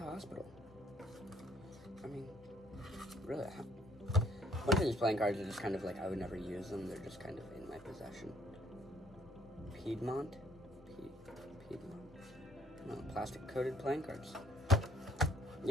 Hospital. I mean, really, a bunch of these playing cards are just kind of like, I would never use them. They're just kind of in my possession. Piedmont? Piedmont? No, plastic coated playing cards.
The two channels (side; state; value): both; normal; correlation 0.64